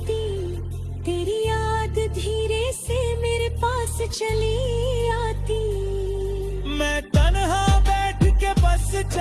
तेरी याद धीरे से मेरे पास चली आती। मैं तन्हा बैठ के बस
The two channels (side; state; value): both; identical; correlation 1.00